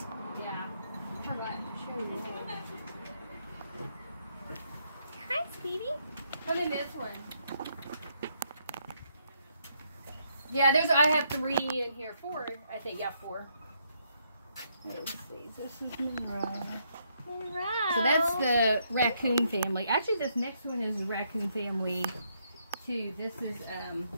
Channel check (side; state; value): both; inverted; correlation -0.74